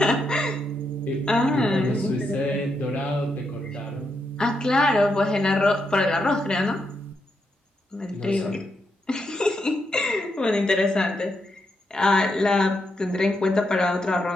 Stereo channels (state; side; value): normal; both; correlation 0.82